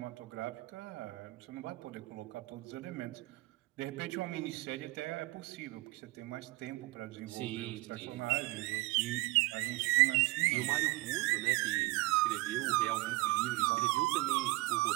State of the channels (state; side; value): quieter; left; 20.7 dB